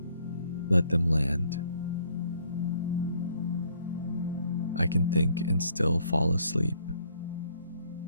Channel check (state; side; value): inverted; both; correlation -0.65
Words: let them land. I can think and still fall asleep.